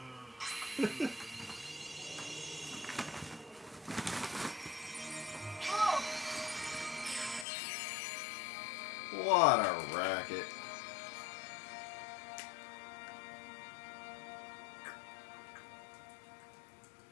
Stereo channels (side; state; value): right; drops out; at 7.5 s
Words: What a racket.